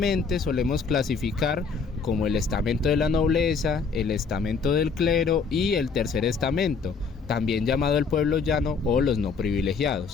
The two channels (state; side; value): quieter; right; 5.2 dB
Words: solemos clasificar como el estamento de la nobleza, el estamento del clero y el tercer estamento, también llamado el pueblo llano o los no